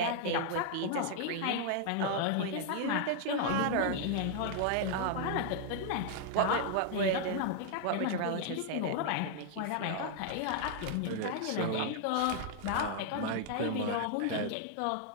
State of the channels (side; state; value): both; different; correlation 0.00